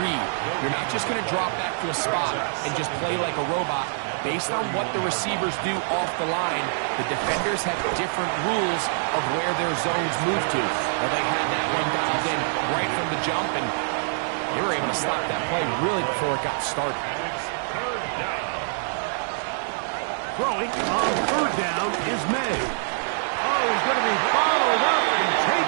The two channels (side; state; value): left; silent; digital silence